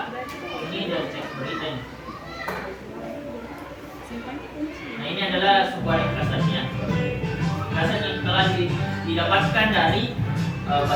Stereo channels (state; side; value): identical; both; correlation 1.00